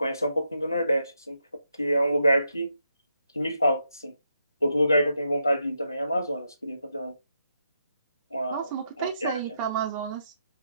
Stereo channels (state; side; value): inverted; both; correlation -0.81